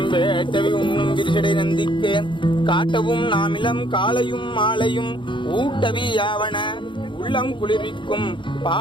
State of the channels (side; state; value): right; late; 0.23 ms